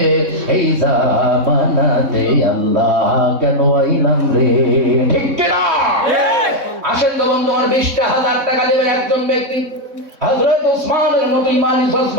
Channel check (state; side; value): late; left; 3.6 ms